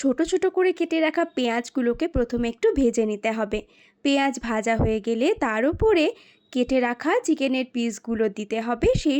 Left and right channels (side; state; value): both; identical; correlation 1.00